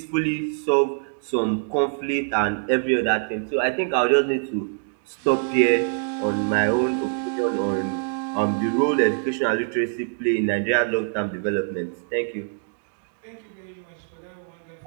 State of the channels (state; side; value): silent; left; digital silence